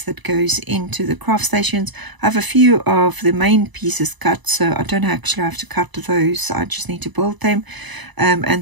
that goes into the craft stations. I have a few of the main pieces cut, so I don't actually have to cut those. I just need to build them.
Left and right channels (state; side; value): late; left; 1.0 ms